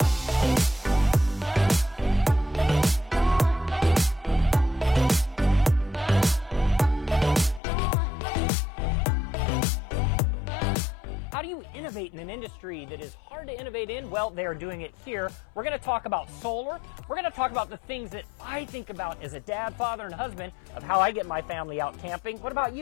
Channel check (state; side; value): drops out; right; at 7.6 s